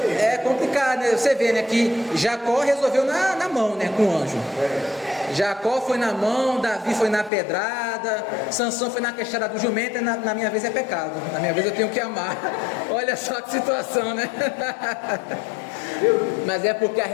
É complicado, né? Você vê, né, que Jacó resolveu na mão, né, com o anjo. Jacó foi na mão, Davi foi na pedrada, Sansão foi na queixada do jumento, e na minha vez é pecado. Na minha vez eu tenho que amar. Olha só que situação, né? Mas é porque a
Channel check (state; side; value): drops out; right; at 7.3 s